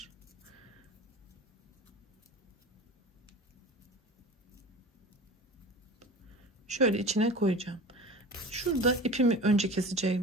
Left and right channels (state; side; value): normal; both; correlation 0.35